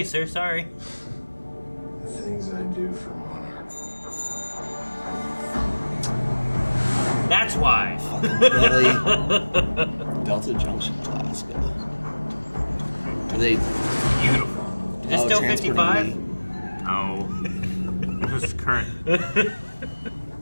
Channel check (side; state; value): both; inverted; correlation -1.00